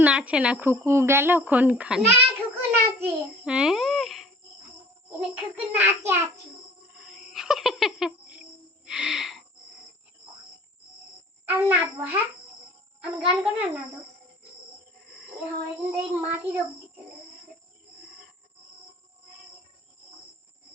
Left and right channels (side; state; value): both; normal; correlation 0.49